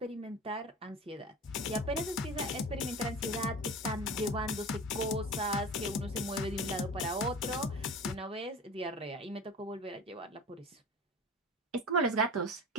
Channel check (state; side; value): normal; both; correlation 0.34